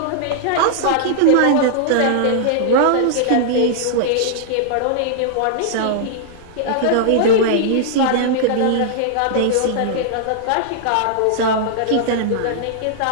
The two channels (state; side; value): different; both; correlation -0.01